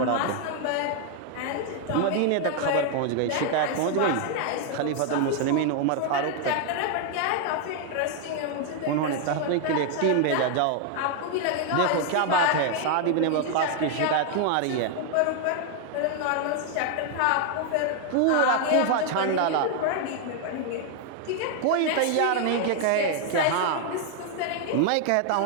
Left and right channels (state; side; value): different; both; correlation 0.00